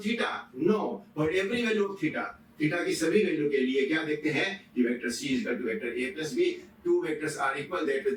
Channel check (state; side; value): identical; both; correlation 1.00